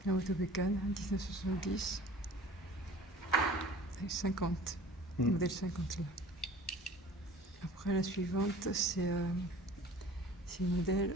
La moto bécane, 1970. Avec 50. Modèle 50 là. Après la suivante, c'est le modèle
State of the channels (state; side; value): normal; both; correlation 0.45